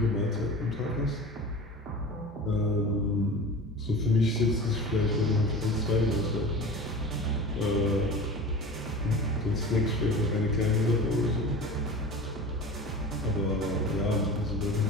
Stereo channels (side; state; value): both; normal; correlation 0.34